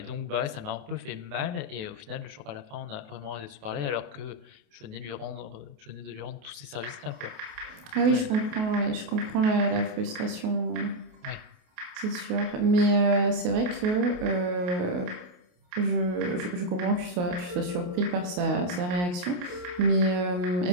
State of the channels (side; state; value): left; late; 28 ms